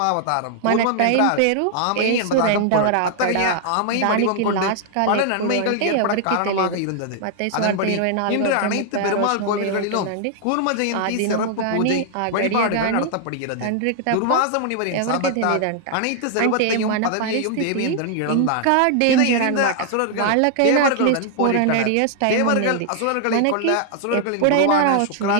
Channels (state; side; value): different; both; correlation 0.00